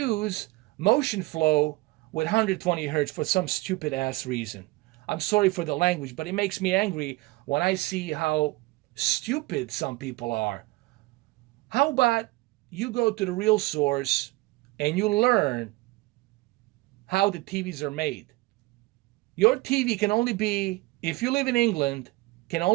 Motionflow with 120 Hertz for some stupid ass reason. I'm sorry for the language, but it makes me angry when I see how stupid some people are. How about you go to the real source and you learn how the TVs are made? Your TV can only be, if you live in England, can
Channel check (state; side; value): quieter; left; 21.3 dB